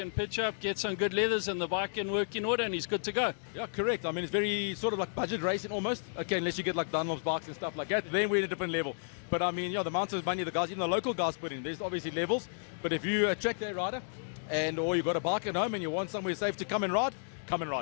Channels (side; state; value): right; silent; digital silence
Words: pitch up, get some good leathers, and the bike can work in order, and he's good to go. Yeah, correct. I mean, it's very sort of like budget racing almost. Okay, unless you get like Dunlop's bikes and stuff like that, then we're at a different level. But I mean, yeah, the amount of money the guys, even the local guys put in, there's obviously levels. But if you attract a rider, or you've got a bike at home and you want somewhere safe to come and ride, come and